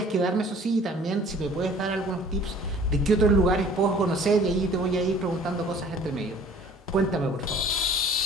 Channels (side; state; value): both; normal; correlation 0.51